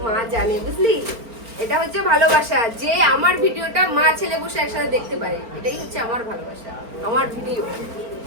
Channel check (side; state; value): left; late; 4.4 ms